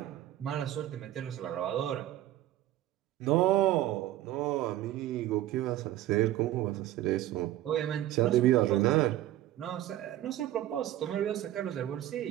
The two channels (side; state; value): left; quieter; 13.7 dB